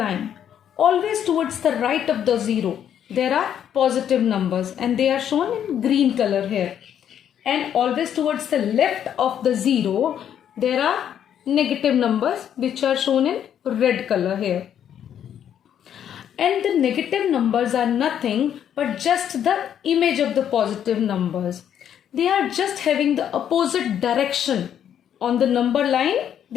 always towards the right of the zero, there are positive numbers and they are shown in green color here. And always towards the left of the zero, there are negative numbers which are shown in red color here. And the negative numbers are nothing but just the image of the positive numbers. They are just having the opposite direction. On the number line,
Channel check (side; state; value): right; quieter; 9.5 dB